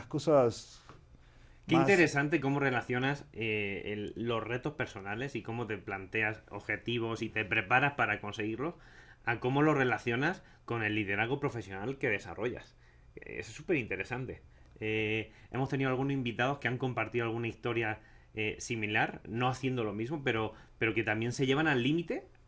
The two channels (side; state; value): both; identical; correlation 1.00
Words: cosas... Qué interesante cómo relacionas los retos personales y cómo te planteas objetivos y te preparas para conseguirlos, a cómo lo relacionas con el liderazgo profesional que desarrollas. Eso es súper interesante. Hemos tenido algunos invitados que han compartido alguna historia similar, no haciendo lo mismo, pero que también se llevan al límite